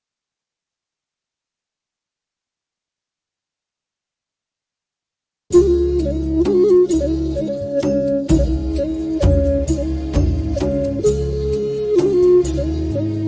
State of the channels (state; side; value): identical; both; correlation 1.00